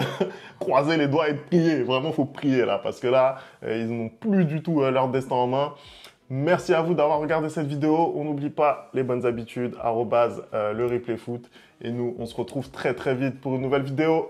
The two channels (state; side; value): identical; both; correlation 1.00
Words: croiser les doigts et prier. Vraiment, il faut prier là, parce que là, ils n'ont plus du tout leur destin en main. Merci à vous d'avoir regardé cette vidéo. On n'oublie pas les bonnes habitudes, @le replay foot. Et nous, on se retrouve très très vite pour une nouvelle vidéo.